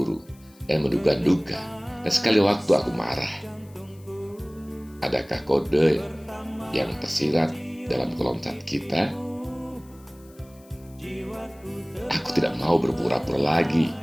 dan menduga-duga, dan sekali waktu aku marah. Adakah kode yang tersirat dalam kolom chat kita? Aku tidak mau berpura-pura lagi,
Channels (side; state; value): left; noise; hiss, 28 dB below the sound